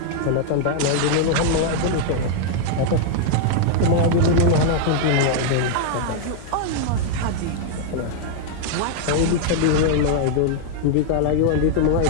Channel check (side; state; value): both; different; correlation 0.00